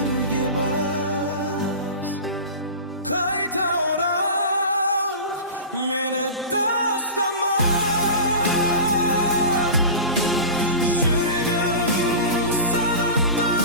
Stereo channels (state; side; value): inverted; both; correlation -0.31